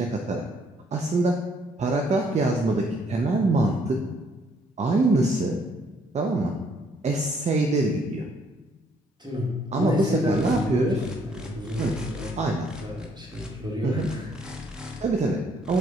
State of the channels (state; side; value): normal; both; correlation 0.67